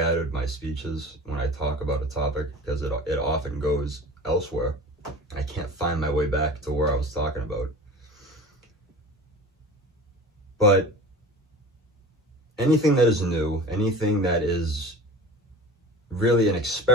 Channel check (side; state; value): both; normal; correlation 0.37